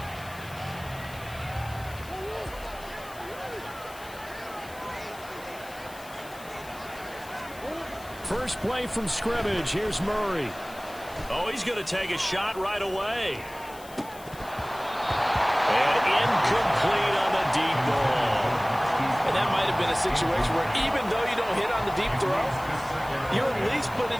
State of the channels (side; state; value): left; noise; hiss, 19 dB below the sound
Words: First play from scrimmage. Here's Murray. Oh, he's going to take a shot right away. Incomplete on the deep ball. And that might have been a situation where even though you don't hit on the deep throw, you're at least put in